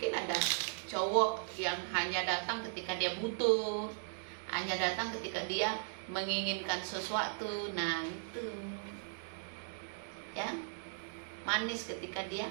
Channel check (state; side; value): silent; left; digital silence